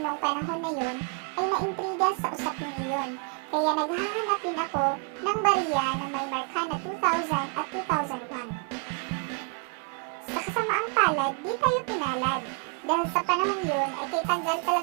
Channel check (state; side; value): quieter; left; 36.5 dB